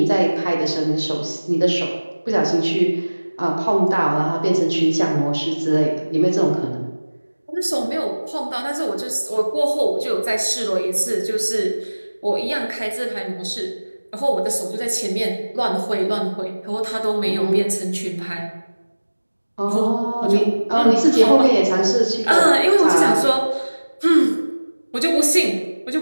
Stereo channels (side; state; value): both; inverted; correlation -1.00